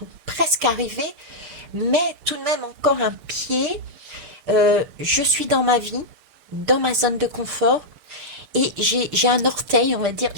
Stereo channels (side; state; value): left; late; 6.8 ms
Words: ou presque arrivé, mais tout de même encore un pied. Je suis dans ma vie, dans ma zone de confort, et j'ai un orteil, on va dire,